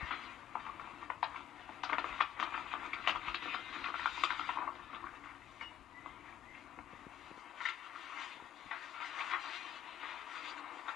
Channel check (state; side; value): quieter; right; 10.5 dB